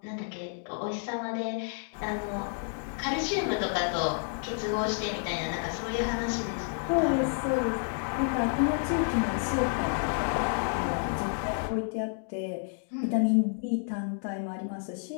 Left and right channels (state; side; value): silent; right; 58 dB below the other